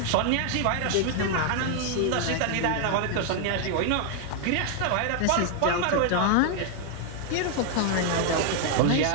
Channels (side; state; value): both; different; correlation 0.00